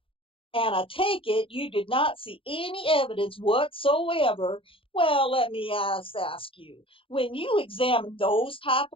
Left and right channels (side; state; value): right; late; 0.26 ms